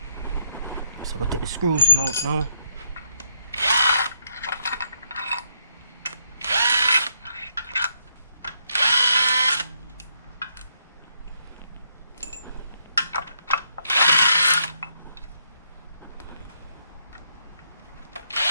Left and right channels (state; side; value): inverted; both; correlation -0.74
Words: go take the screws out now.